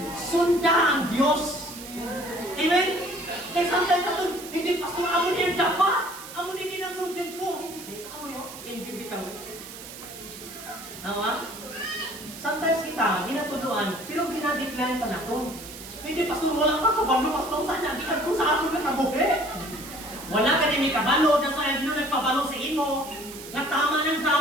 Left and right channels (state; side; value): noise; right; hiss, 13 dB below the sound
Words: Sunda ang Diyos. Amen? Kaya sometimes ito, hindi pastor, amo niya dapat. Amo niya kinasundin ko. Hindi sis, amo niya, inbibitang. Tama? Sometimes kita, ginatuluan, pero ginadecline pa na ito. Hindi pastor, wala pa kabalo, pastor, saan niya, di ka sa akin na kabuhi. Wala ka din may kabalo, na sa Dino nagpabalo sa imo. Natama ng